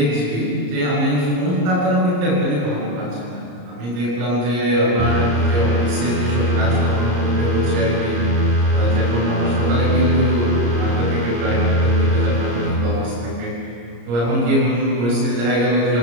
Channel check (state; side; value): late; left; 34 ms